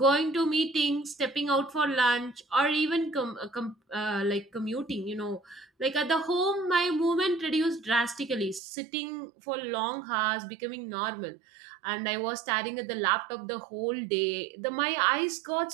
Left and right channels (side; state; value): left; drops out; at 8.6 s